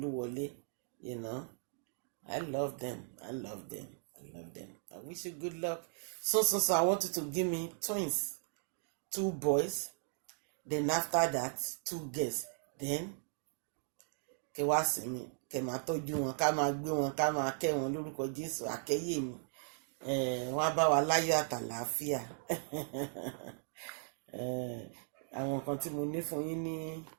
I love them. I wish you good luck. So I want you to give me twins. 2 boys. Then after that, 2 girls. Then kẹ wá sí mi, kẹ máa tọ́jú wọn, ká máa gbé wọn, ká máa kẹ́ wọn lórúkọ Jésù, àkẹ́yè mi. wọ́n á bá wa láyọ̀ àtàlàáfíà. Àwọn nǹkan tí mo ní fún yín ní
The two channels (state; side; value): silent; left; digital silence